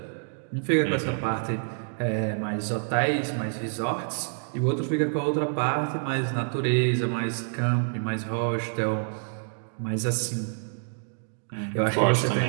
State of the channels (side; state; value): left; silent; digital silence